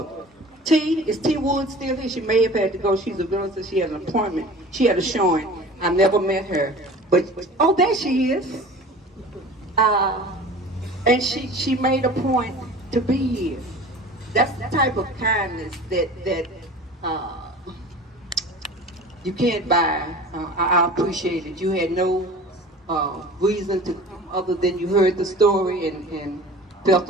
Is T Wood still here? She may have had to go. She's a realtor. She had an appointment. She had a showing. I never met her. But, oh, there she is. And she made a point to be here. That's the type of kindness that you can't buy. I appreciate it. You had no reason to come other than you heard the story and felt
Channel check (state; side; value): normal; both; correlation 0.40